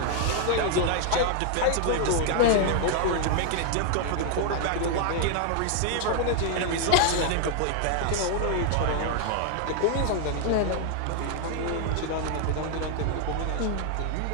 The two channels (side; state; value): both; different; correlation 0.00